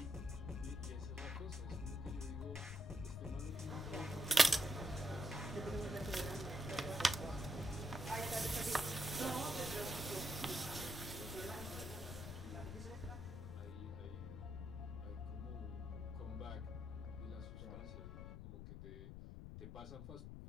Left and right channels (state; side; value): noise; left; rumble, 8 dB below the sound